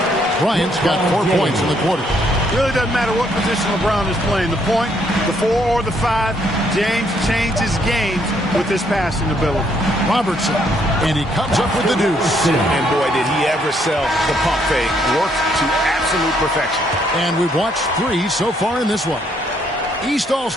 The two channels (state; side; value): normal; both; correlation 0.70